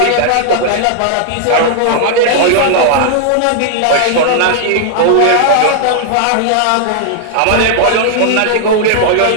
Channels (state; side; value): different; both; correlation -0.01